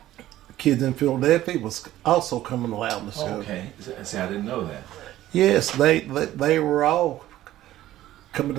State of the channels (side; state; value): left; quieter; 14.2 dB